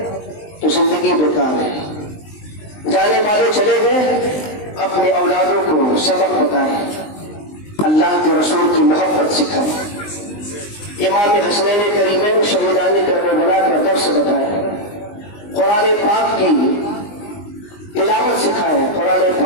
تو زندگی بیکار ہے۔ جانے والے چلے گئے، اپنے اولادوں کو سبق بتائیں، اللہ کے رسول کی محبت سکھائیں، امام حسنین کریمین شہیدان کربلا کا درس بتائیں، قرآن پاک کی تلاوت سکھائیں، قرآن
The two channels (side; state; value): right; late; 19 ms